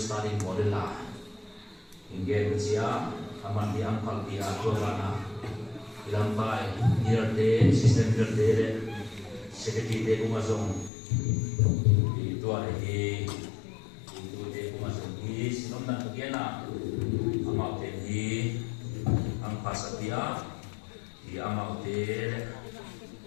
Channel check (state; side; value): drops out; right; at 10.9 s